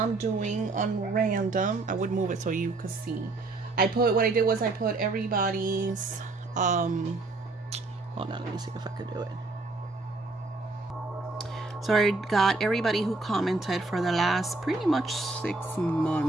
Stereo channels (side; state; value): left; quieter; 3.3 dB